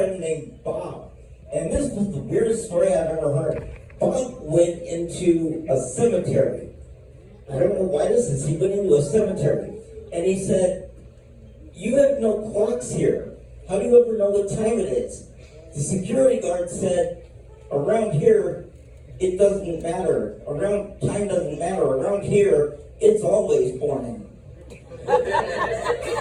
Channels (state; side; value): identical; both; correlation 1.00